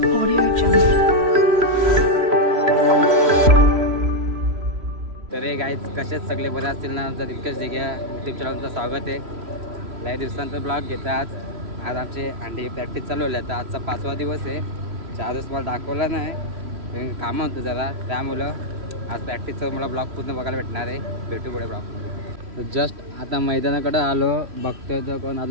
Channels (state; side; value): late; left; 3.0 ms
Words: तर हे गाईज कसेच सगळे बरे असतील ना. आमचा दिलकेश दिघे यूट्यूब चॅनलचं स्वागत आहे. लय दिवसांचा ब्लॉग घेता. आज आमची अंडी प्रॅक्टिस चालू आहे. आता आजचा 5वा दिवस आहे. 4 दिवस मला दाखवला नाही, कामं होतं जरा, त्यामुळं आज प्रॅक्टिसचं मला ब्लॉग पूर्ण बघायला भेटणार आहे. भेटू पुढे ब्लॉगमध्ये. तर जस्ट आता मैदानाकडे आलो, बघतोय तर कोण